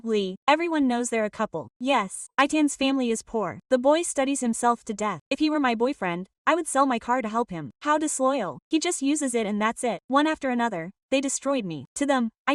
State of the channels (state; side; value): identical; both; correlation 1.00